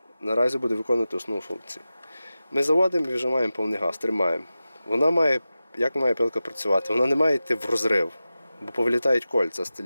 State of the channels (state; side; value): inverted; both; correlation -0.94